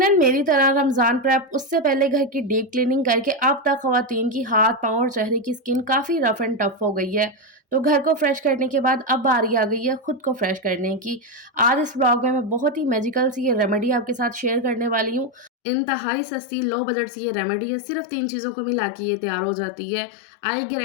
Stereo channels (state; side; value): drops out; right; at 15.5 s